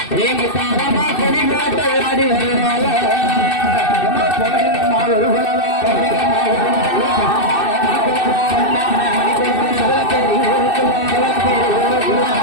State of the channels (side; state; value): right; late; 2.6 ms